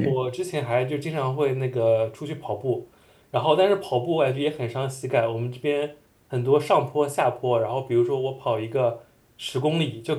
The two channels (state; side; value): identical; both; correlation 1.00